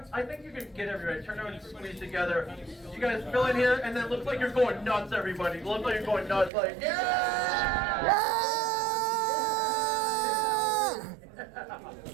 think you can get everybody. Turn around and squeeze together. You guys fill in here, and then look like you're going nuts, everybody. Look like you're going nuts, like yeah!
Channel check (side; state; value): left; drops out; at 6.5 s